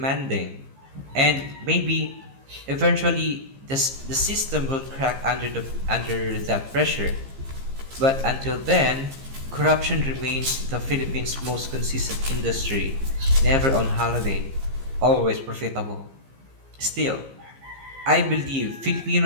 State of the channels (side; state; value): left; late; 15 ms